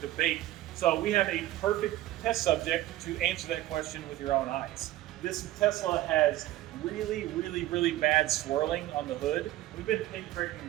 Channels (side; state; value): left; quieter; 15.2 dB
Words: So we have a perfect test subject to answer that question with your own eyes. This Tesla has really bad swirling on the hood. We've been paint correcting